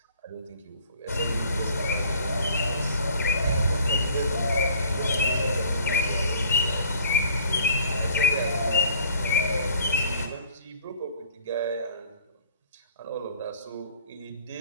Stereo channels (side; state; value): both; inverted; correlation -0.54